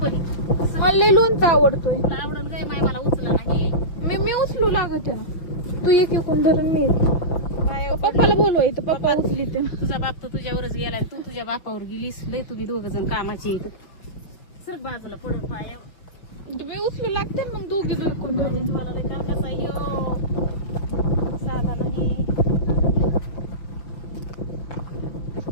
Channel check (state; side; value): late; right; 5.9 ms